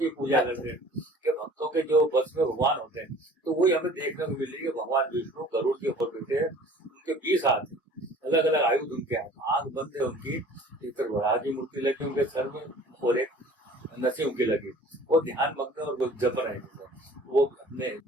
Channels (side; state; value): both; normal; correlation 0.48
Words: पूजा करते हैं, कि भक्तों के जो बस में भगवान होते हैं। तो वही हमें देखने को मिल रही है, भगवान विष्णु गरुड़ के ऊपर बैठे हैं, उनके 20 हाथ है, अलग अलग आयुध उनके हाथ, आंख बंद है उनकी, एक तरफ वराह की मूर्ति लगी उनके सर में और एक नरसिंह की लगी, वो ध्यान मग्न और वो जप रहे हैं वो हमने।